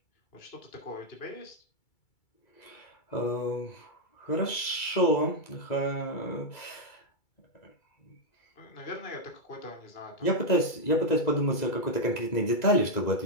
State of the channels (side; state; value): right; late; 2.3 ms